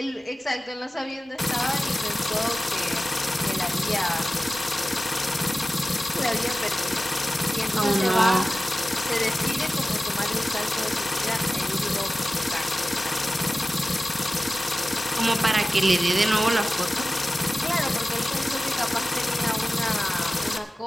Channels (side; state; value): both; normal; correlation 0.96